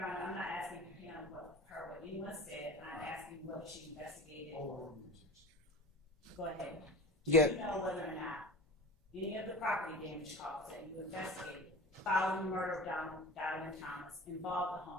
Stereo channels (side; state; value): both; normal; correlation 0.35